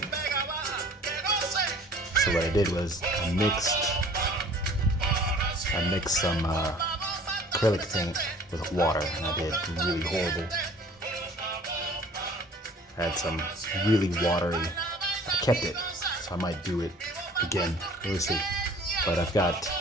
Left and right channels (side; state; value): both; normal; correlation 0.49